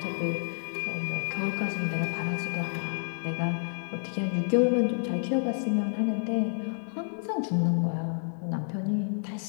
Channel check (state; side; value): silent; right; digital silence